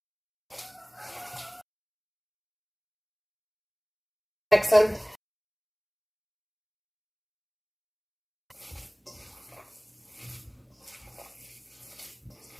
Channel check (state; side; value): identical; both; correlation 1.00